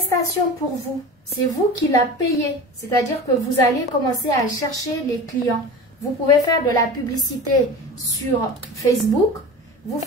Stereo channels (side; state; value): both; normal; correlation 0.33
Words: pour vous. c'est vous qui la payez. C'est-à-dire que vous allez commencer à chercher les clients. Vous pouvez faire de la publicité sur Facebook. Vous